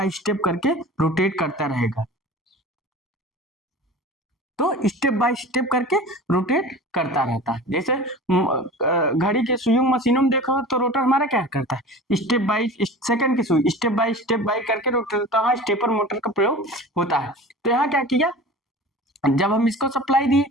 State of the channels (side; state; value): both; normal; correlation 0.37